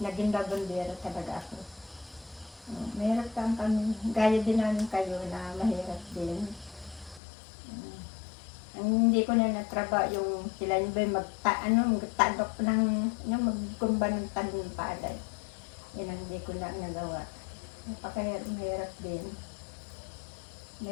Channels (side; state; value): right; drops out; at 7.2 s